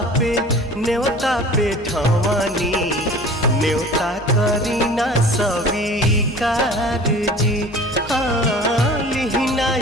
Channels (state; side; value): normal; both; correlation 0.43